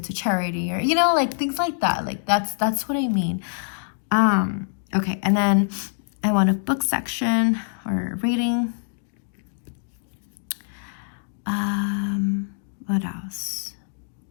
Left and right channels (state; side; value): silent; right; digital silence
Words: to charity, or you know, like things like that. Like that's what I mean. Okay, and then I want a book section or reading. What else?